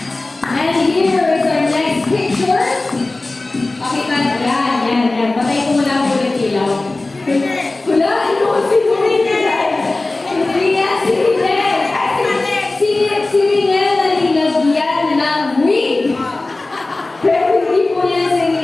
And here is our next picture. Pakita na. Yan. Patay ko muna po ulit ilaw. Wala, ano? Sino Rinel? Hindi yan, si Rinel. Si Rinel na nilagyan ng wig. Pero hindi po yan si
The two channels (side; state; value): right; quieter; 3.1 dB